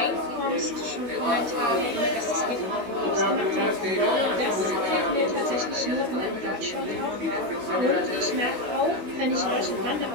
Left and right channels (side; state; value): left; late; 16 ms